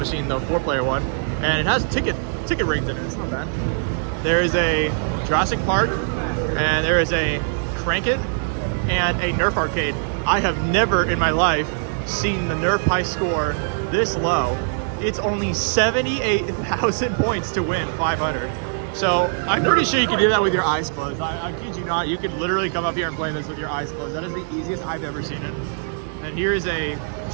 the 4-player one. And it has ticket rings in it, it's not bad. There is a Jurassic Park, and there is a Crank It, and a Nerf arcade. I have never in my life seen the Nerf high score this low. It's only 78,000 points to win 500. So I'm pretty sure you can do that with your eyes closed. I kid you not, you could literally come up here and play this with your eyes closed. That is the easiest I've ever seen it. And here is a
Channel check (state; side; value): silent; left; digital silence